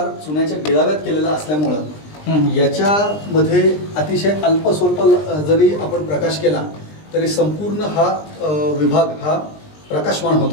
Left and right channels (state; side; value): late; right; 20 ms